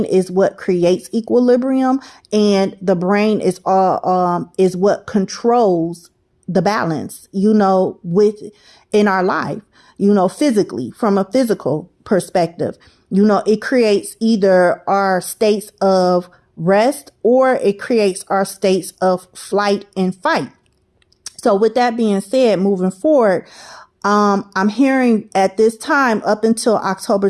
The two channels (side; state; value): both; identical; correlation 1.00